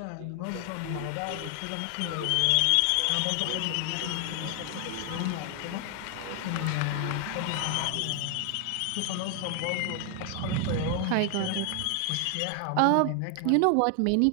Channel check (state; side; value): different; both; correlation 0.00